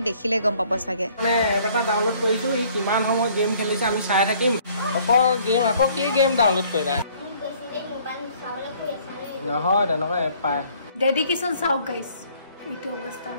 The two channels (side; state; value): both; inverted; correlation -0.59